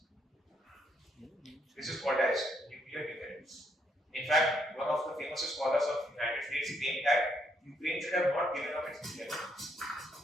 This is called as nuclear deterrence. In fact, one of the famous scholars of the United States claimed that Ukraine should have not given up its nuclear weapons.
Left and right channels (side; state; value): both; normal; correlation 0.73